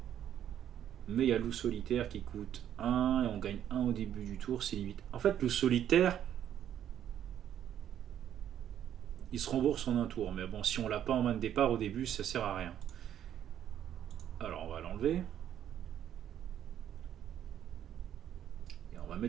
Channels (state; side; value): quieter; left; 10.3 dB